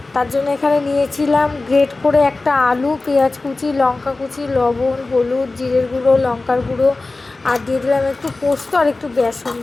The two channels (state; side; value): quieter; right; 3.3 dB